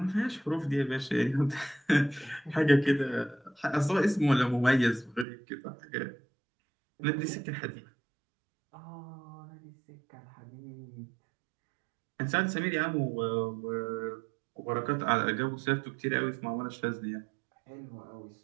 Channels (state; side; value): drops out; left; at 5.2 s